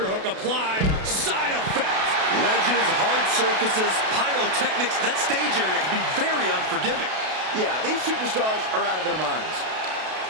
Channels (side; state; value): left; late; 32 ms